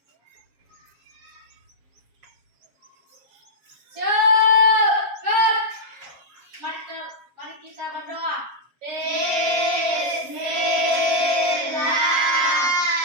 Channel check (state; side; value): late; left; 7.4 ms